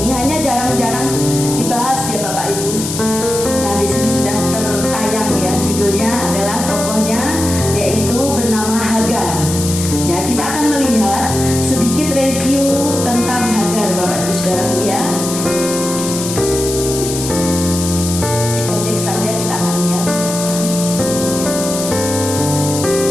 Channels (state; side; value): noise; left; hiss, 6 dB below the sound